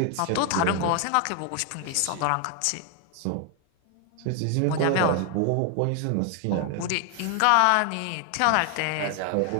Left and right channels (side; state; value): both; different; correlation 0.00